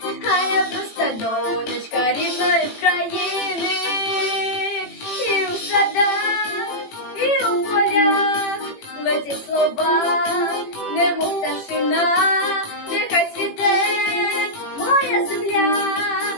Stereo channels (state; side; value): late; right; 18 ms